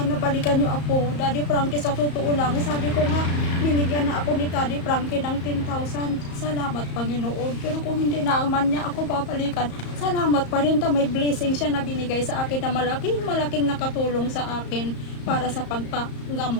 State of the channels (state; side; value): late; right; 34 ms